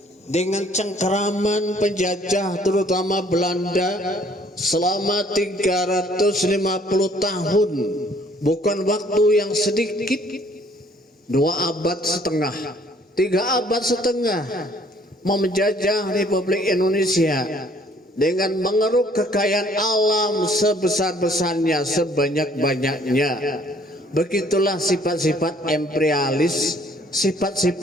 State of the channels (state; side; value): normal; both; correlation 0.59